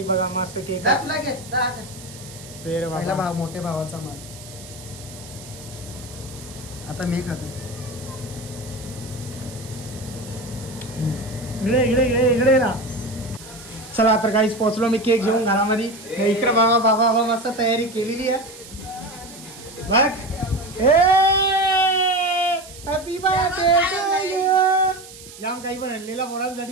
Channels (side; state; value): right; noise; hiss, 17 dB below the sound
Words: बघा मस्त केक. तुला घे पहिला भाव मोठ्या भावाचा माल. आता मी खातो. इकडे इकडे इकडे इकडे ना. चला तर काहीच पोहोचलो मी केक घेऊन घरामध्ये. इकडे बाबा बाबा बाबा मस्त तयारी केलेली आहे बघ. Happy birthday to you. जाम काही पण आणलेला